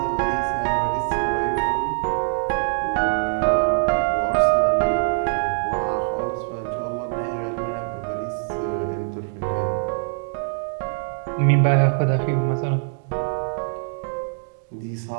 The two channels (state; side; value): silent; left; digital silence